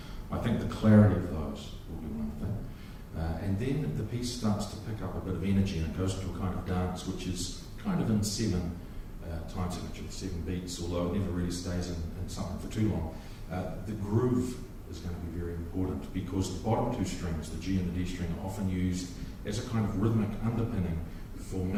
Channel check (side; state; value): both; identical; correlation 1.00